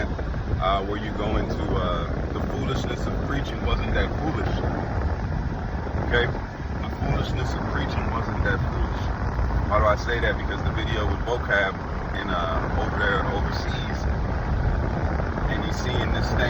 where you go into the foolishness of preaching wasn't that foolish. Okay? The foolishness of preaching wasn't that foolish. Why do I say that? Because the video with vocab in over there overseas, and he's seeing this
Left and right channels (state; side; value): identical; both; correlation 1.00